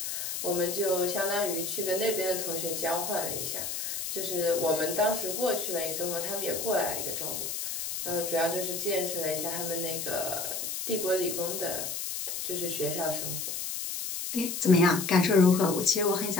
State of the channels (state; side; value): noise; left; hiss, 4 dB below the sound